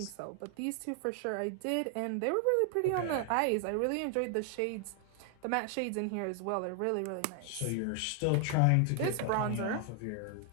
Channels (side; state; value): both; different; correlation 0.00